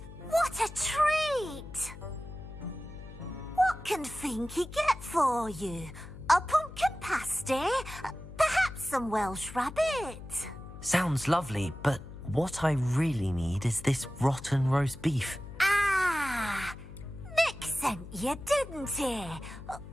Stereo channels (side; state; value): left; noise; hum, 14 dB below the sound